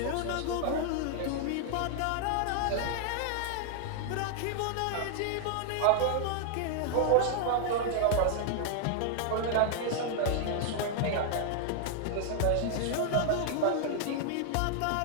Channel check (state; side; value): different; both; correlation 0.00